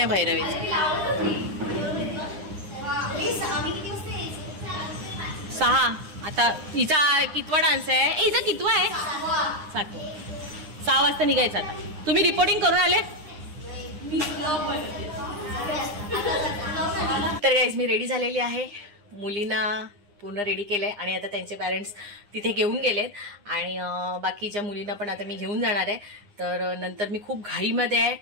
भैरवीचं. 6 आता हिचा कितवा डान्स आहे? हिचा कितवा आहे? 7. 6 वाजता निघायचं. आता तुम्ही रिपोर्टिंग करून आले? तर गाईज मी रेडी झालेली आहे. मुलींना पूर्ण रेडी केलंय आणि आता त्यांचे पॅरेंट्स तिथे घेऊन गेलेत आणि बाकीच्या मुलींना पण आता मी घेऊन जाणार आहे. तर नंतर मी खूप घाईमध्ये आहे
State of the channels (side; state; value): left; late; 9.8 ms